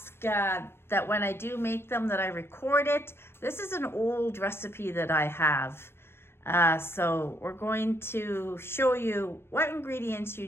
that when I do make them that I record it. This is an old recipe that I have. So we're going to show you what ingredients you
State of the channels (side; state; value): right; late; 0.12 ms